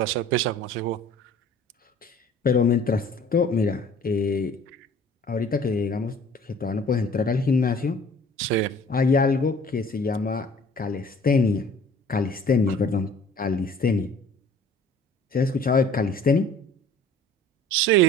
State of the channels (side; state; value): both; normal; correlation 0.50